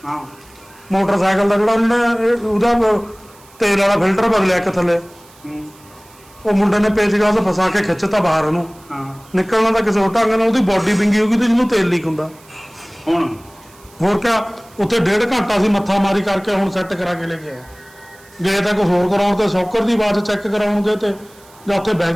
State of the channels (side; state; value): right; noise; hiss, 26 dB below the sound